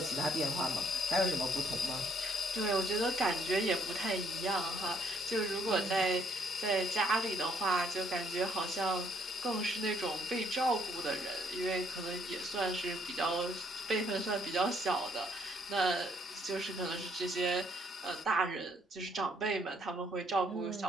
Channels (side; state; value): both; normal; correlation 0.67